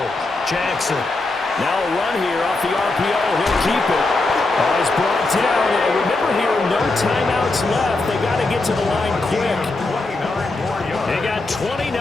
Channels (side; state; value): right; quieter; 3.2 dB